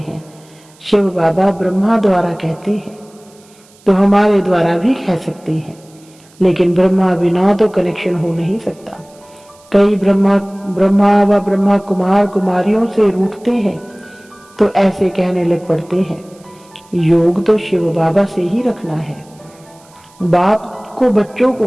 शिव बाबा ब्रह्मा द्वारा कहते हैं, तो हमारे द्वारा भी कह सकते हैं, लेकिन ब्रह्मा बिना तो कनेक्शन हो नहीं सकता। कई ब्रह्मा व ब्रह्मा कुमार कुमारियों से रूठते हैं तो ऐसे कहने लग पड़ते हैं योग तो शिव बाबा से ही रखना है। बाप को बच्चों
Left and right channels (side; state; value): right; noise; hiss, 29 dB below the sound